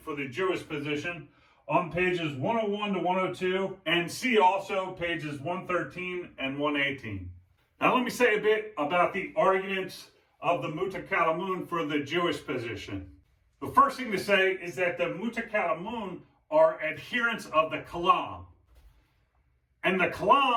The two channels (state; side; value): identical; both; correlation 1.00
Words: for the Jewish position on pages 101 to 102, and see also pages 113 and 118. Now let me say a bit about the arguments of the Mutakalamun for the Jewish position. The first thing to say is that the Mutakalamun are adherents of the Kalam. And the